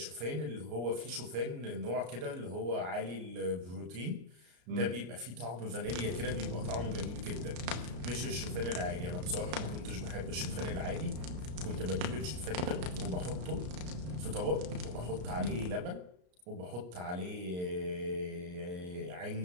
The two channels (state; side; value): late; left; 33 ms